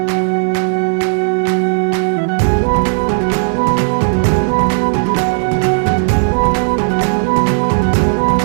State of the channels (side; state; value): left; silent; digital silence